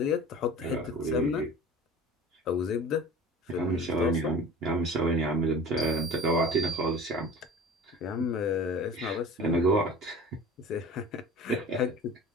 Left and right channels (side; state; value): both; normal; correlation 0.40